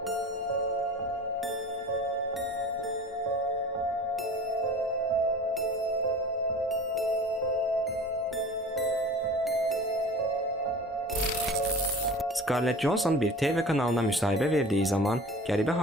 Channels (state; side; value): normal; both; correlation 0.39